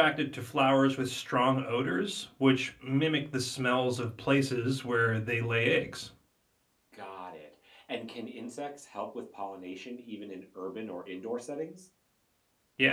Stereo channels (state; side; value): identical; both; correlation 1.00